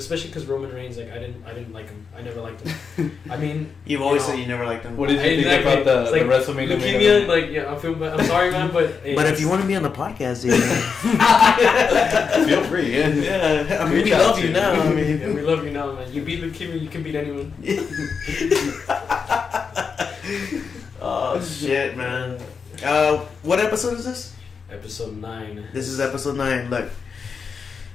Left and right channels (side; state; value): right; quieter; 5.7 dB